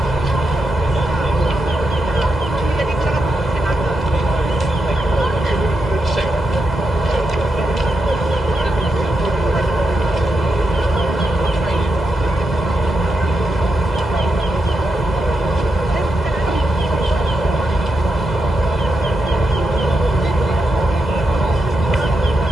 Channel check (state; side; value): normal; both; correlation 0.85